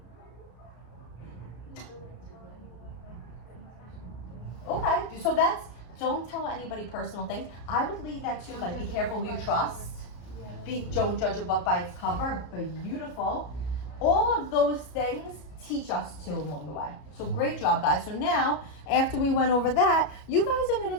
Okay, so that's, don't tell anybody personal things. I would leave that to like, be careful who you trust. Don't judge a book by its cover. Beautiful. All of those things teach us too along the way. So great job, guys. So now, after we went over that, you guys are going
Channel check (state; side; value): late; right; 33 ms